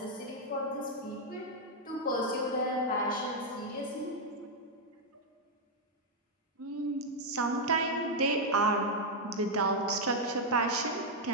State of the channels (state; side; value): normal; both; correlation -0.01